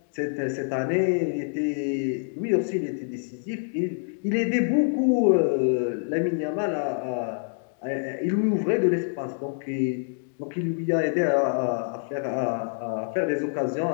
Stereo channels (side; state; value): right; silent; digital silence